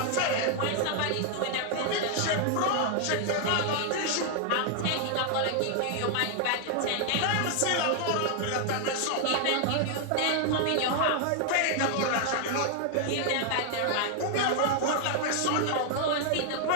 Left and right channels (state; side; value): different; both; correlation 0.00